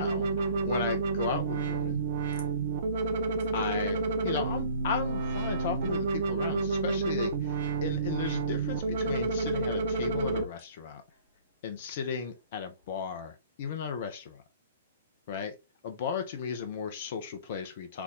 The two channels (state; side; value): inverted; both; correlation -0.51